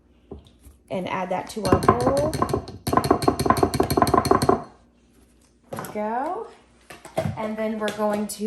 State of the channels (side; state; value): both; identical; correlation 1.00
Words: and add that to our bowl. There we go. And then we're going